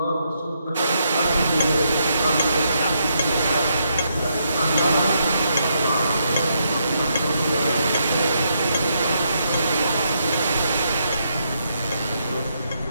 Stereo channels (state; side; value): inverted; both; correlation -0.78